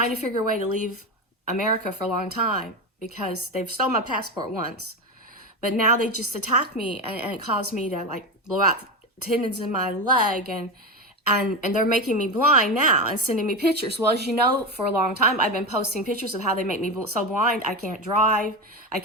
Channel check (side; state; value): both; normal; correlation 0.17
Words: to figure a way to leave America for a long time because they've stolen my passport once. But now they just attack me and it caused me to like blow out tendons in my leg and they're making me blind now and sending me pictures. Well, as you know, for a long time, I've been posting pictures of how they make me so blind. I can't drive. I